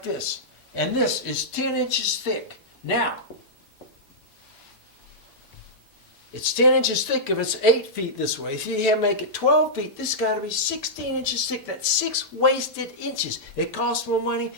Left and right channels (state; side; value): normal; both; correlation -0.11